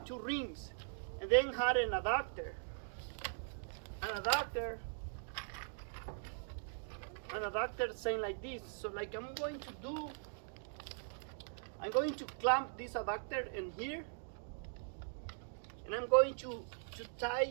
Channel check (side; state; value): left; silent; digital silence